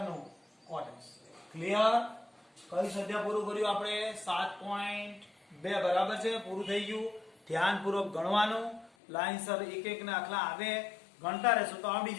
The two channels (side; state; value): right; drops out; at 8.9 s